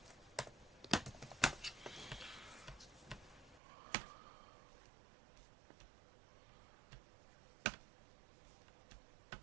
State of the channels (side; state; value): left; drops out; at 3.6 s